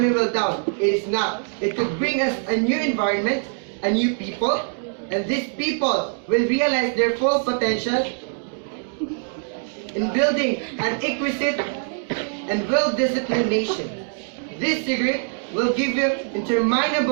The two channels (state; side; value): silent; left; 58 dB below the other